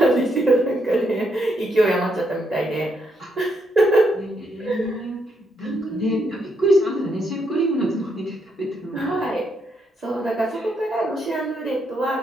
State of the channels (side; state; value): both; normal; correlation 0.77